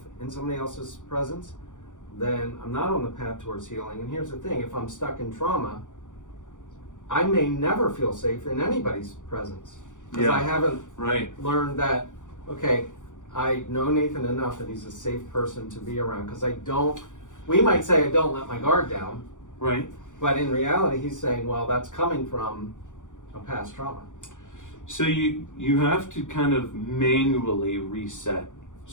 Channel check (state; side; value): late; right; 0.87 ms